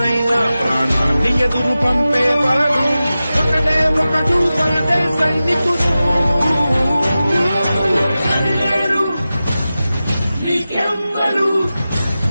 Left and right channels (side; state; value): both; inverted; correlation -0.94